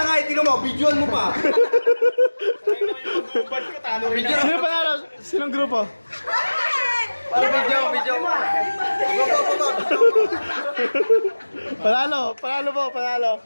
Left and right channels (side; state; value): both; inverted; correlation -1.00